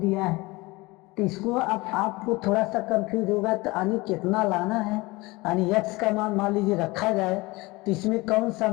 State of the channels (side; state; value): right; quieter; 22.6 dB